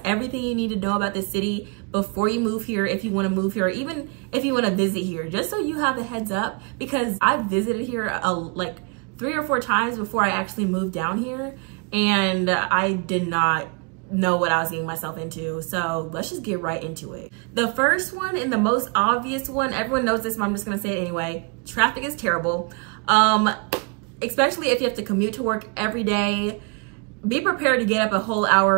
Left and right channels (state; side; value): quieter; left; 32.7 dB